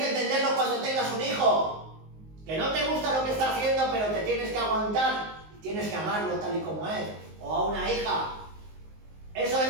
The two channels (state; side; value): late; left; 19 ms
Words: entenderlo cuando tengas un hijo. Que no te gusta lo que está haciendo, pero te tienes que aguantar. Tienes que amarlo tal y como es. O a una hija. Eso